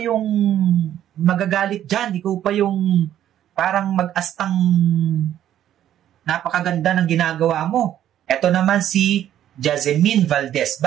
magagalit dyan. Ikaw pa yung parang mag-astang napakaganda ng ginagawa mo. Ito naman si Jasmine Valdez.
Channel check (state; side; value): quieter; left; 11.3 dB